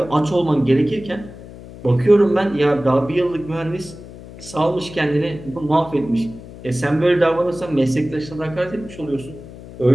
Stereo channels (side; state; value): left; noise; hum, 16 dB below the sound